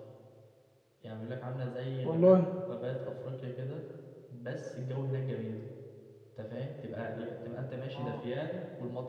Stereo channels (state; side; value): identical; both; correlation 1.00